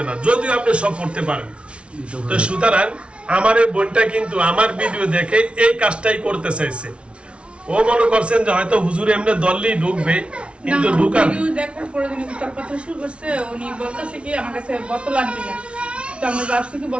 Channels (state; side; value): late; left; 0.060 ms